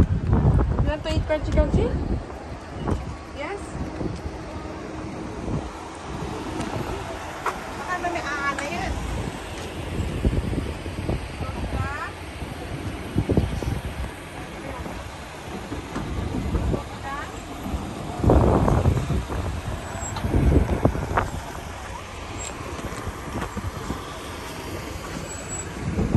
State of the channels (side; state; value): both; identical; correlation 1.00